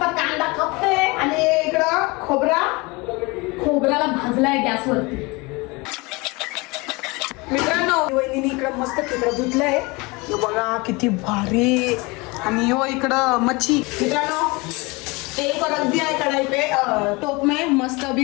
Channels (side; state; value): right; quieter; 25.4 dB